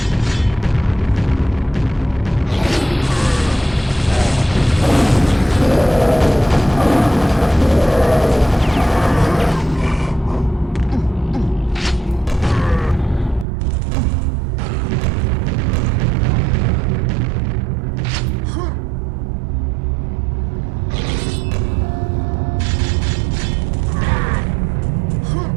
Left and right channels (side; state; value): left; drops out; at 13.5 s